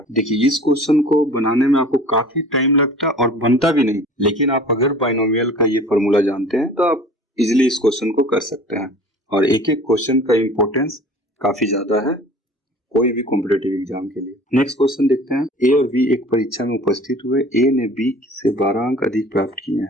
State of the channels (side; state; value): both; normal; correlation 0.45